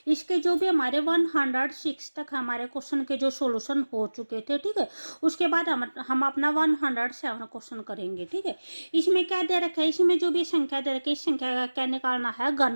इसके जो भी हमारे 106 तक हमारे क्वेश्चन के जो सॉल्यूशन हो चुके थे, ठीक है, उसके बाद हम अपना 107 क्वेश्चन करेंगे। ठीक है, इसमें क्या दे रखा है, इसमें जो भी संख्या दे रखी है, इस संख्या का क्या निकालना है,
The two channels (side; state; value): both; inverted; correlation -1.00